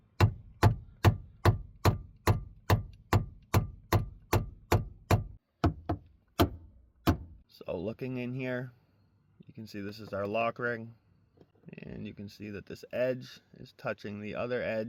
So looking in here, you can see this is our lock ring, and you can see that this edge is touching the other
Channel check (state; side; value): identical; both; correlation 1.00